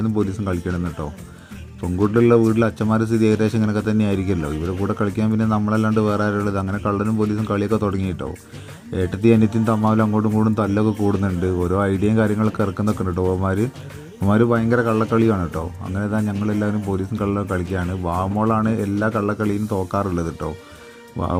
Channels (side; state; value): both; identical; correlation 1.00